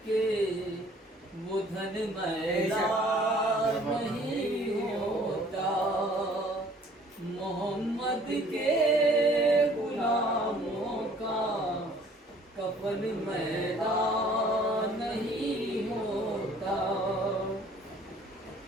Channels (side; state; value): both; normal; correlation 0.55